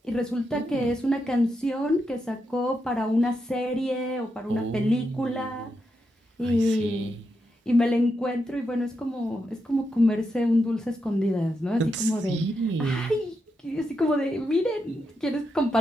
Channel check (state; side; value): normal; both; correlation 0.84